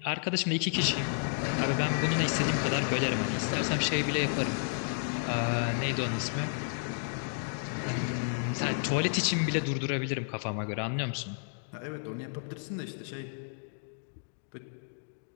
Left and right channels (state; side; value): silent; right; digital silence